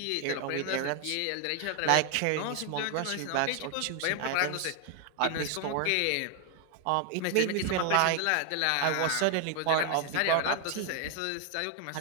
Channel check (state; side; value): different; both; correlation 0.00